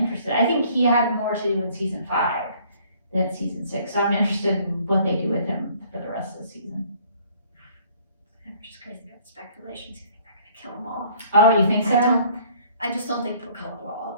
I think he had more to do in season 5 than season 6. So I'm interested in what they do with him for the rest of the season. I'm just crazy about speculations. You think they're gonna kill him off? Oh, you think so? I just don't think they'll kill him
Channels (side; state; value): both; inverted; correlation -0.58